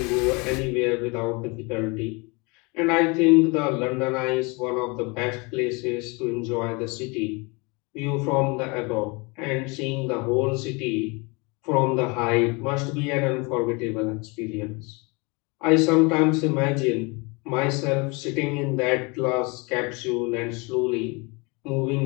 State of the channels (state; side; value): quieter; right; 28.6 dB